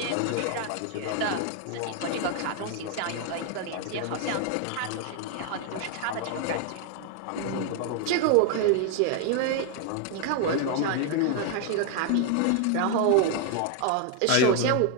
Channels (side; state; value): both; different; correlation 0.00